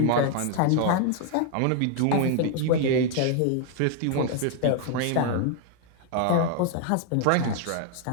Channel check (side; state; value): both; different; correlation 0.00